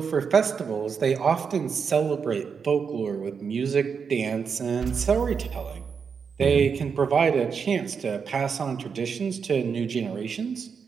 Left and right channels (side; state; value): left; quieter; 6.1 dB